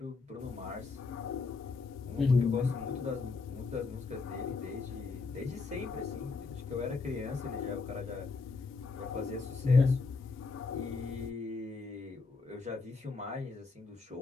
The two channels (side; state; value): right; quieter; 4.2 dB